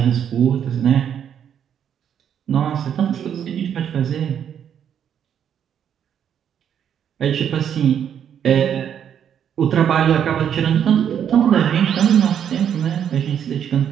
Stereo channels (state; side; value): quieter; left; 8.8 dB